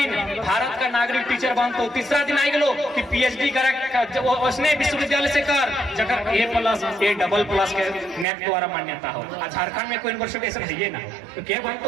भारत का नागरिक टीचर बनतो, तीसरा दिन आई गलो कि PhD करे उसने विश्वविद्यालय से कर जगह A+, A++ के नेट द्वारा मान्यता हो। झारखंड में कोई यूनिवर्सिटी ऐसा है ना, तो क्या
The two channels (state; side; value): drops out; left; at 8.2 s